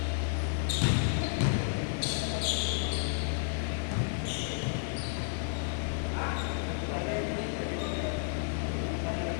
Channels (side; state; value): right; silent; digital silence